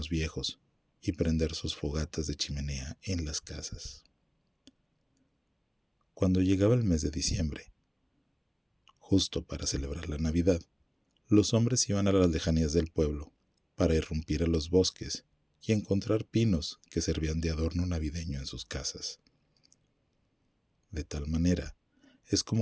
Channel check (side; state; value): both; identical; correlation 1.00